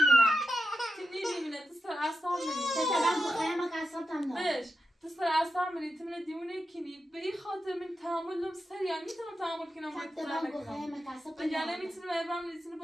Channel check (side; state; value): both; normal; correlation 0.88